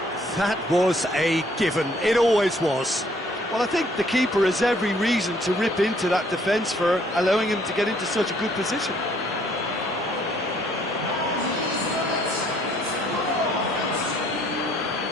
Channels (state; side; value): normal; both; correlation 0.63